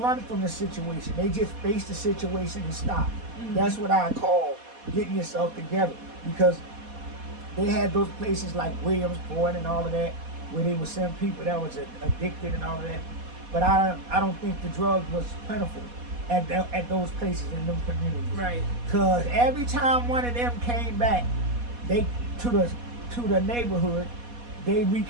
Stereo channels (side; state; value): left; late; 4.2 ms